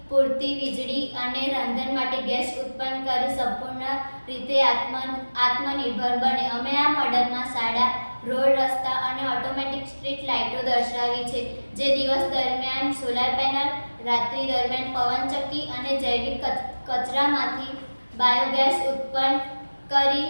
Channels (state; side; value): inverted; both; correlation -1.00